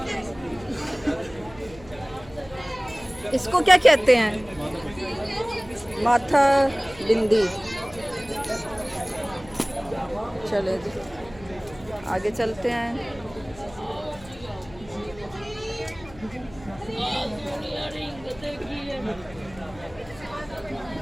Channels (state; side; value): noise; left; hum, 20 dB below the sound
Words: इसको क्या कहते हैं? माथा बिंदी। चले जी आगे चलते हैं।